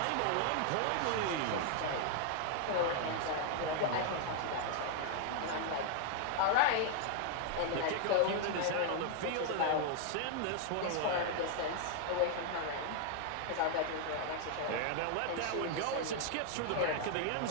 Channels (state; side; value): different; both; correlation 0.00